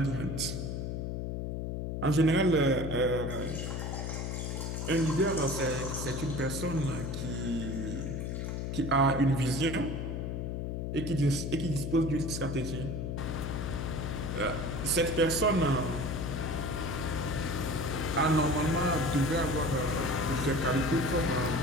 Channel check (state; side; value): noise; left; hum, 3 dB below the sound